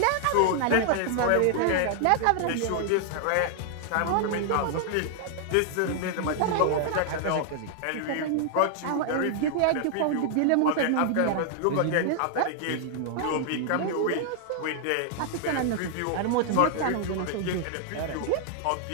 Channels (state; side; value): different; both; correlation 0.00